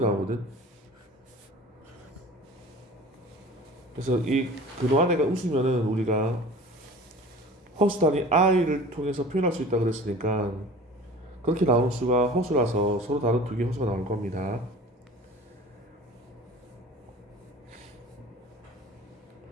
그래서 이 근호 안에가 음수면은 우리가 허수 단위 i를 통해서 표현할 수 있다 그랬으니까 그렇게 나오는 수가 허수라서 서로 다른 두 개 허수가 나올 겁니다.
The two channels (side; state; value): both; normal; correlation 0.42